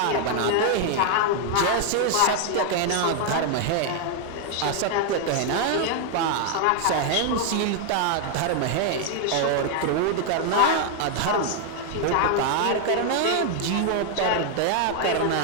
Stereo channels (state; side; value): different; both; correlation 0.00